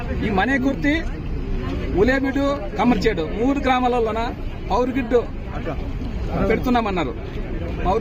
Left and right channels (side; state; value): both; identical; correlation 1.00